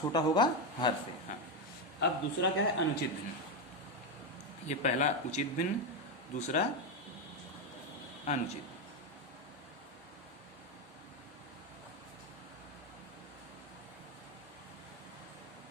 छोटा होगा हर से। हाँ, अब दूसरा क्या है, अनुचित भिन्न। ये पहला उचित भिन्न, दूसरा अनुचित।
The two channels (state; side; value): normal; both; correlation 0.09